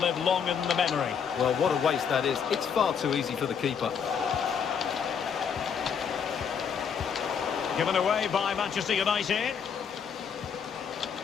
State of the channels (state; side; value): quieter; right; 7.0 dB